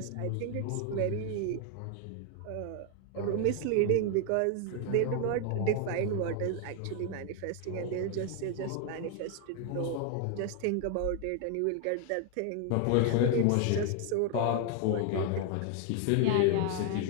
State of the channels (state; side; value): different; both; correlation 0.00